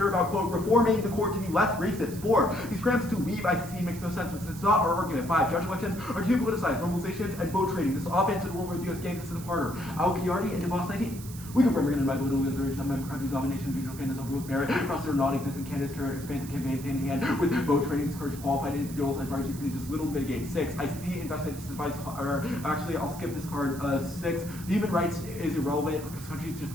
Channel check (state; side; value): noise; right; hiss, 15 dB below the sound